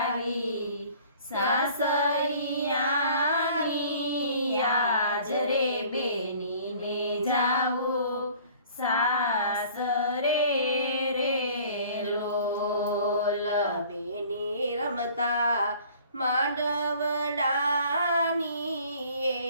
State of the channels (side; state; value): both; inverted; correlation -0.51